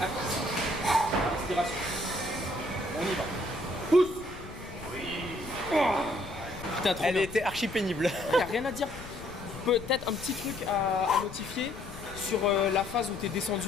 actif. Respiration. On y va. Pousse. Oui. Putain, trop Elle bien. était archi pénible. Il n'y a rien à dire. Peut-être un petit truc à notifier sur la phase où tu es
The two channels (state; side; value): noise; left; rumble, 14 dB below the sound